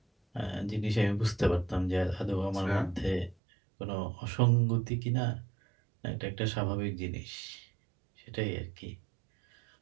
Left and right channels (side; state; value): left; drops out; at 3.4 s